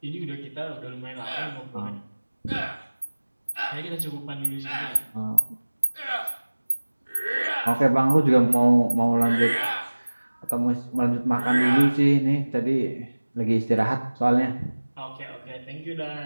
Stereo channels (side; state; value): both; inverted; correlation -1.00